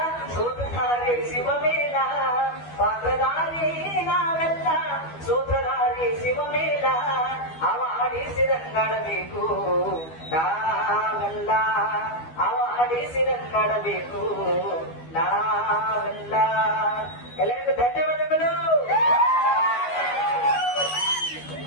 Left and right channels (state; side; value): late; right; 12 ms